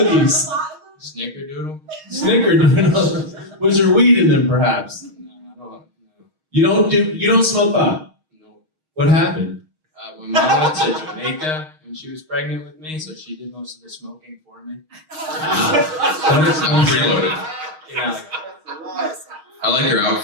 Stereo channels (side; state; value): left; late; 6.4 ms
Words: Snickerdoodle. Snickerdoodle. Was there weed in them, perhaps? No, I don't know. You don't smoke pot. No. What happened? When Mom went to Jamaica when she was pregnant with me, so she did most of the smoking for me. I'm preloaded. Yeah. I like your